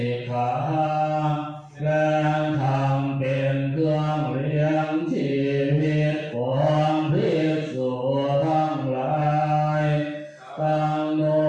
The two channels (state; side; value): identical; both; correlation 1.00